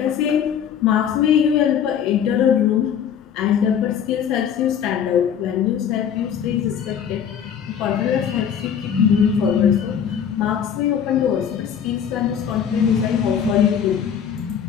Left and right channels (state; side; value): quieter; right; 8.3 dB